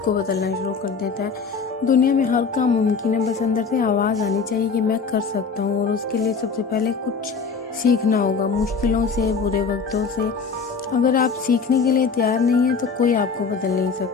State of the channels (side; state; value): right; quieter; 5.3 dB